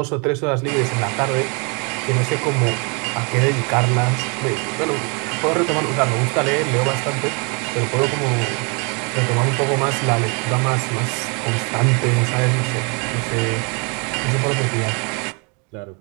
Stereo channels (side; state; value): left; quieter; 33.7 dB